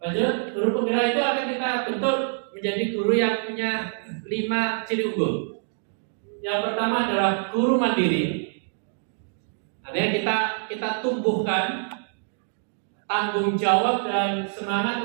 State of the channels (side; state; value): left; silent; digital silence